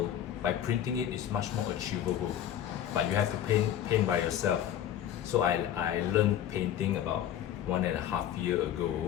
by printing it, it's much more achievable. But you have to paint by yourself. So I learned painting about 1.5 years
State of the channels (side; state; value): right; quieter; 10.7 dB